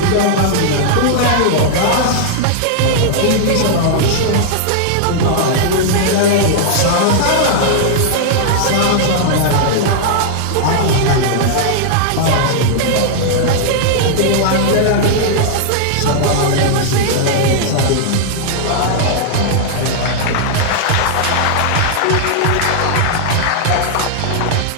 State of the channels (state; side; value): different; both; correlation -0.01